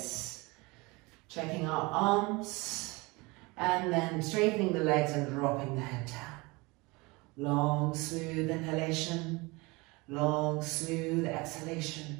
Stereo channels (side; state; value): left; quieter; 25.0 dB